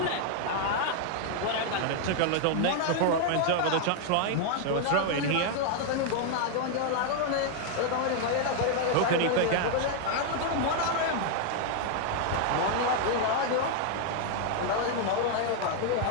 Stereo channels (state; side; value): different; both; correlation 0.00